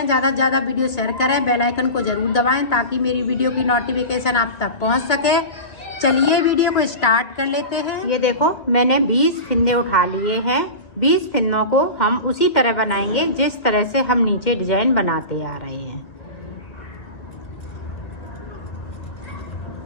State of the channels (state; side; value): late; right; 2.5 ms